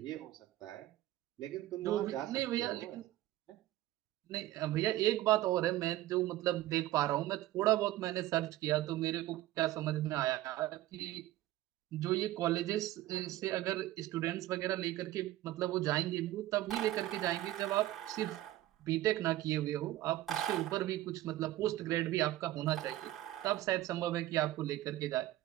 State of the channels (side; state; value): left; quieter; 15.3 dB